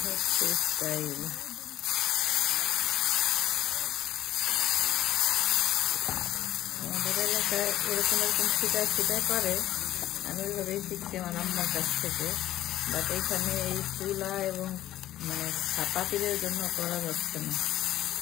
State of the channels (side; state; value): right; quieter; 13.7 dB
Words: হচ্ছে স্টাইল। আমাদের এলাকায় এরকম এরকম ছিটায় ছিটায় করে, আমি ওইভাবেই শিখছি আমার আম্মার কাছ থেকে। বাট এইখানে এই চুলা এবং মানে পাতিলের জন্য করা যাচ্ছে না।